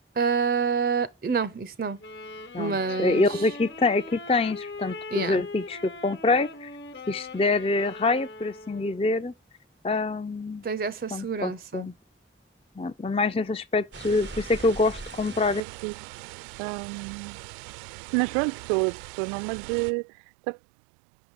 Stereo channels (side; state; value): left; drops out; at 15.6 s